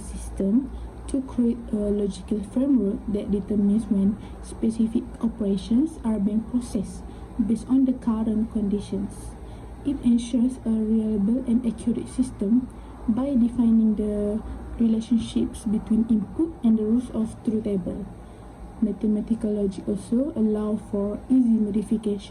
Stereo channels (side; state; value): both; identical; correlation 1.00